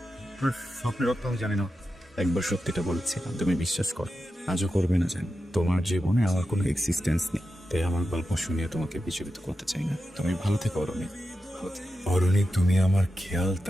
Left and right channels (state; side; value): normal; both; correlation 0.90